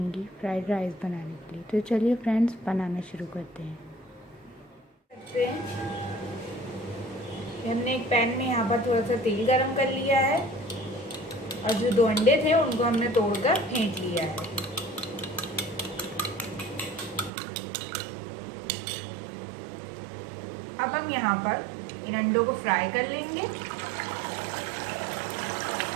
फ्राइड राइस बनाने के लिए। तो चलिए फ्रेंड्स, बनाना शुरू करते हैं। हमने एक पैन में यहाँ पर थोड़ा सा तेल गरम कर लिया है और जो 2 अंडे थे उनको हमने तोड़कर फेंट लिया है। अब हम यहाँ पर इन अंडों को फ्राई कर लेंगे।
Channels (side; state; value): left; drops out; at 17.3 s